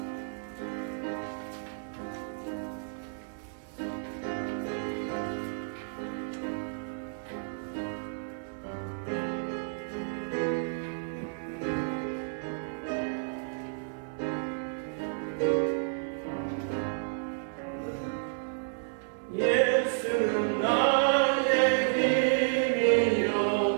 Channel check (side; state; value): left; silent; 57 dB below the other